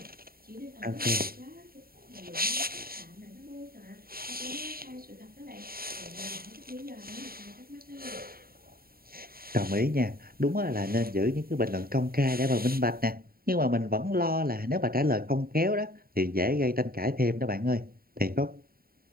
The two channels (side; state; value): left; late; 0.43 ms